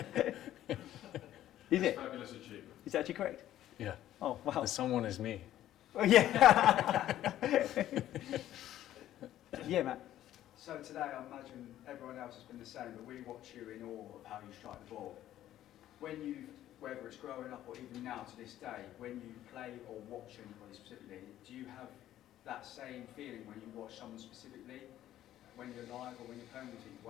Is it? Fabulous achievement. Is that actually correct? Yeah. Oh, wow. The someone is me. Oh, yeah. Yeah, Matt. So today, I imagine everyone else has been the same, but we watch you in awe of how you strike the ball. Whether it's growing up or even now to this day, when you play or watch anybody specifically, do you have that same feeling when you watch someone specifically, when you're live or when you're playing, you think,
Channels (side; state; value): right; quieter; 12.8 dB